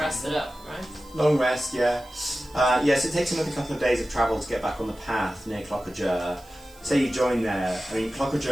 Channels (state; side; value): noise; right; hiss, 25 dB below the sound